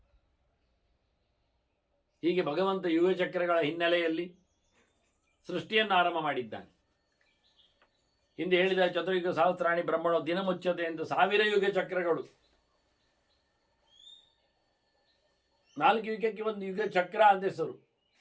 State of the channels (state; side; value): identical; both; correlation 1.00